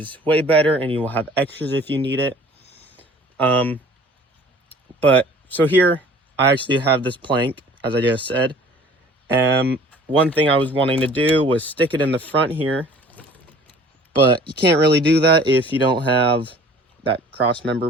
way better, and you will have extras if you need it. But so here I actually have this plank, as I just said. One thing I was wanting to do was stick it in the front here, but you can't really do that if you don't have that cross member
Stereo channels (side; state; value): both; normal; correlation 0.49